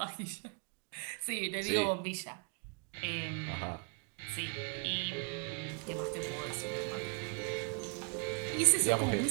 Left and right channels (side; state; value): left; quieter; 35.1 dB